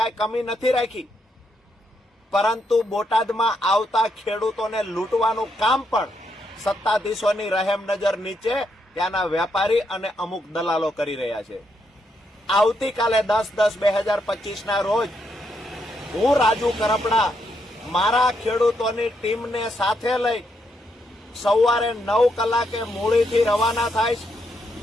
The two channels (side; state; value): both; normal; correlation 0.79